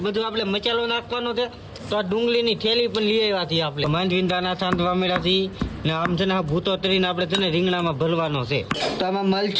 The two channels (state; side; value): identical; both; correlation 1.00